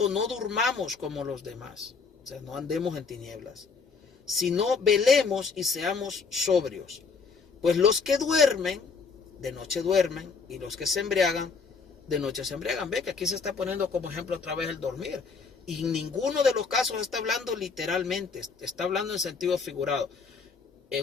no durmamos como los demás. O sea, no andemos en tinieblas, sino velemos y seamos sobrios. Pues los que duermen, de noche duermen, y los que se embriagan, de noche se embriagan. Ve que aquí se está poniendo como ejemplo otra vez el dormir. Y en ninguno de los casos está hablando literalmente, está hablando en sentido figurado.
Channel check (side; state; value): right; quieter; 5.0 dB